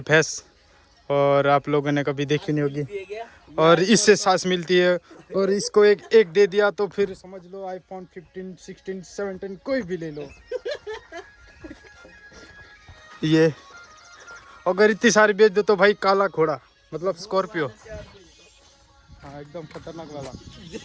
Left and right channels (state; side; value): identical; both; correlation 1.00